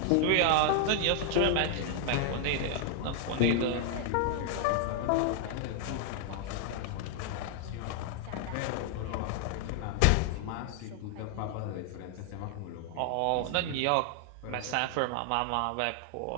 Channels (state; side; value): different; both; correlation 0.00